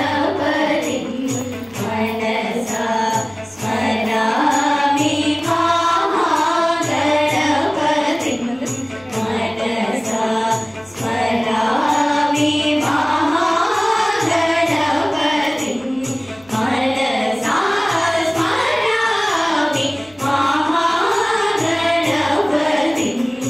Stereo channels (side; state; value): left; noise; hum, 29 dB below the sound